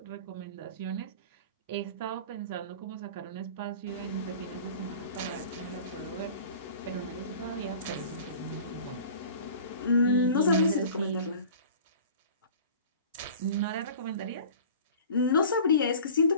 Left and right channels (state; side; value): inverted; both; correlation -0.42